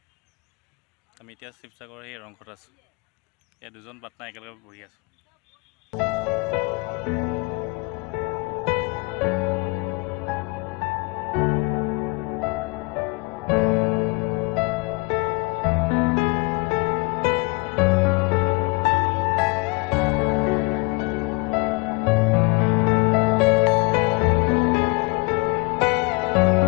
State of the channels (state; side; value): quieter; right; 28.3 dB